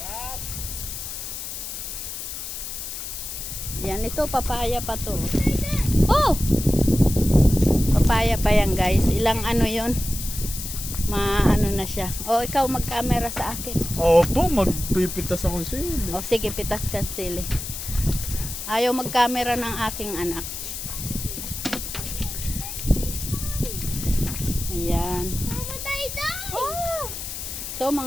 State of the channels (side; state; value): left; noise; hiss, 7 dB below the sound